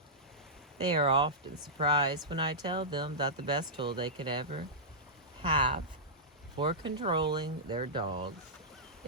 They are often surprised when I tell them that the best tool they could ever have for controlling their dogs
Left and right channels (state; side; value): normal; both; correlation -0.13